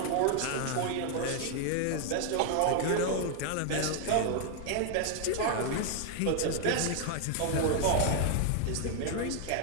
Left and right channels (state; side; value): different; both; correlation 0.00